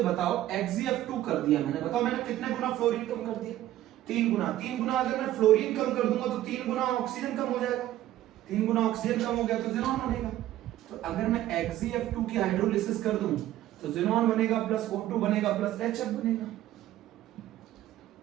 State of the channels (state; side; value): quieter; left; 13.9 dB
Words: बताओ, XgF2 कर दिया मैंने, बताओ मैंने कितने गुना फ्लोरीन कम कर दिया? 3 गुना। 3 गुना अगर मैं फ्लोरीन कम कर दूंगा तो 3 गुना ऑक्सीजन कम हो जाएगा। 3 गुना ऑक्सीजन कम हो गया तो ज़ीनॉन बनेगा। तो अगर मैं XgF2 की हाइड्रोलिसिस कर दूं तो ज़ीनॉन बनेगा प्लस O2 बनेगा प्लस HF बनेगा।